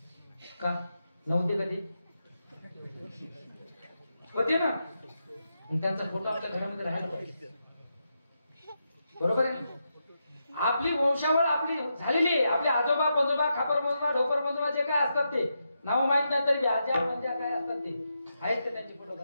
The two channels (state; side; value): inverted; both; correlation -0.85